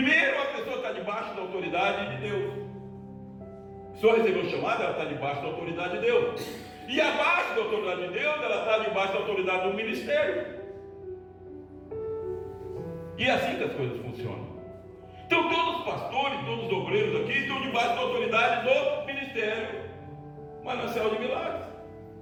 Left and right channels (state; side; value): identical; both; correlation 1.00